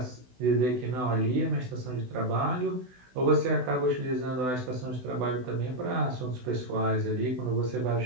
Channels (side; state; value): left; late; 16 ms